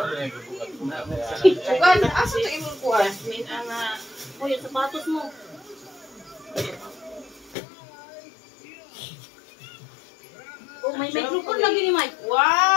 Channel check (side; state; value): right; drops out; at 7.6 s